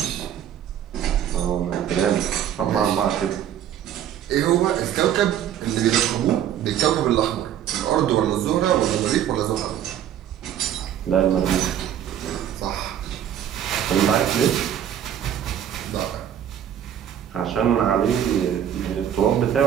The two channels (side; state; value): left; quieter; 10.2 dB